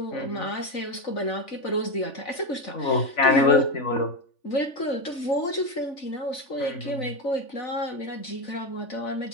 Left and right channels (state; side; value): late; right; 3.5 ms